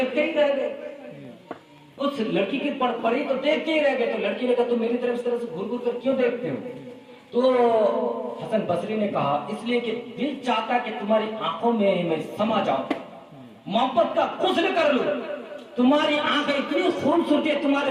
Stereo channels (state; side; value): identical; both; correlation 1.00